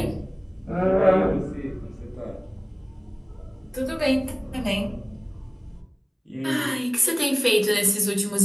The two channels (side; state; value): both; identical; correlation 1.00